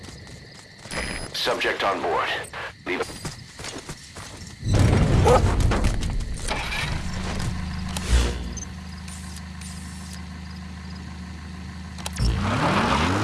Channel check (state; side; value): identical; both; correlation 1.00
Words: Subject on board. Leave it.